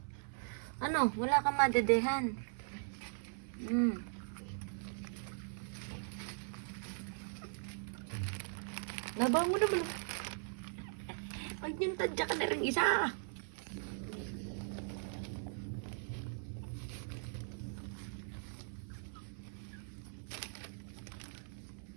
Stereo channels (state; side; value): silent; left; 51 dB below the other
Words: Ano? Wala kang madedehan. Laban mo naman. Ay, yung tadya ka na rin isa.